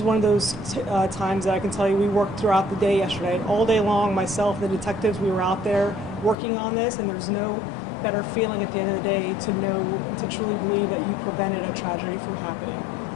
one of those times that I can tell you we worked throughout the day yesterday. All day long, myself, the detectives, we were out there working on this, and there's no better feeling at the end of the day to truly believe that you prevented a tragedy from happening.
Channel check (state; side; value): drops out; right; at 6.4 s